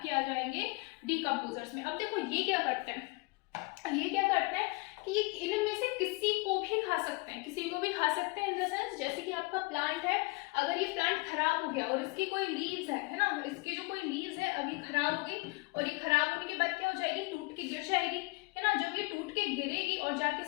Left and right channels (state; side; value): quieter; right; 27.0 dB